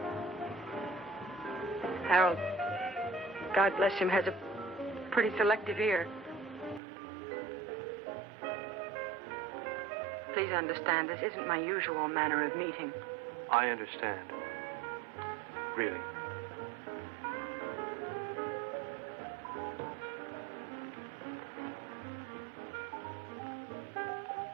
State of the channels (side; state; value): left; drops out; at 6.8 s